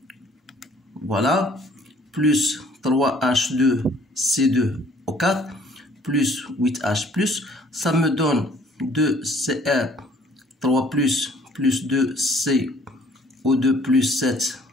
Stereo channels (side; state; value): both; normal; correlation 0.59